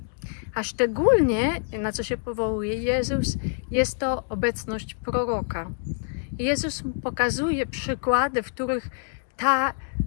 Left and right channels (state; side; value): silent; right; 61 dB below the other